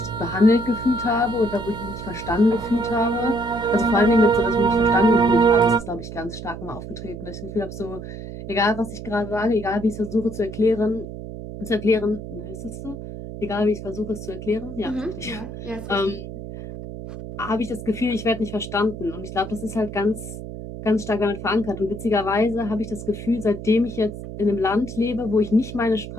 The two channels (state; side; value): noise; right; hum, 10 dB below the sound